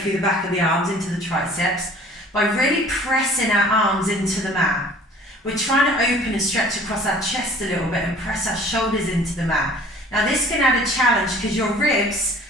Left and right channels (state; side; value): normal; both; correlation 0.50